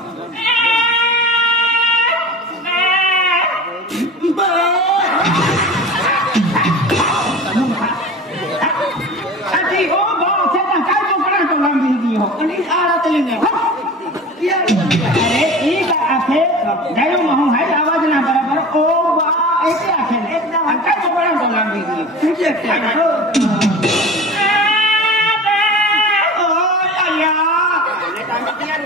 आवाज ना बराबर ओ बा ऐसे आखे एकदम काय चोपडा बोला मी तुझे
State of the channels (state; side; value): normal; both; correlation 0.36